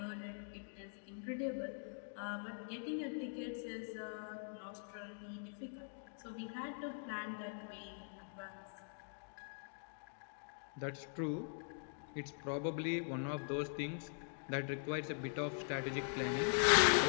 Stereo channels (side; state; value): right; silent; digital silence